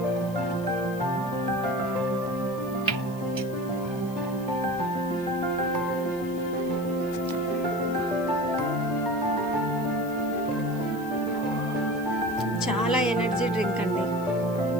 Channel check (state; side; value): noise; left; hiss, 21 dB below the sound